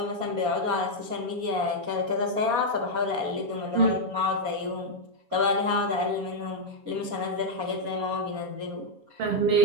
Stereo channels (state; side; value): late; left; 7.2 ms